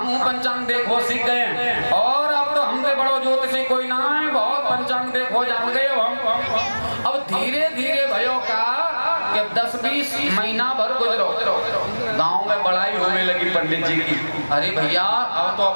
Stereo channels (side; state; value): both; inverted; correlation -1.00